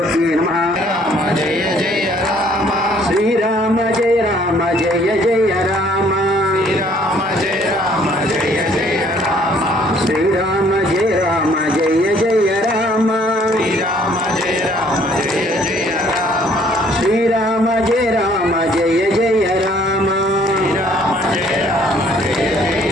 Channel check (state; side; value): normal; both; correlation 0.60